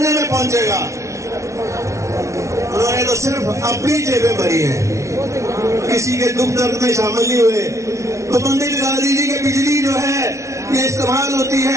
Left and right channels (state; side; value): late; left; 0.14 ms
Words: में पहुंचेगा। उन्होंने तो सिर्फ अपनी जेबें भरी हैं, किसी के दुख दर्द में शामिल नहीं हुए। तो बंदी लगा दीजिए कि बिजली जो है ये इस्तेमाल होती